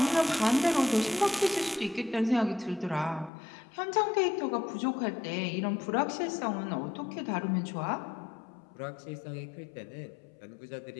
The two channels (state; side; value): drops out; right; at 3.3 s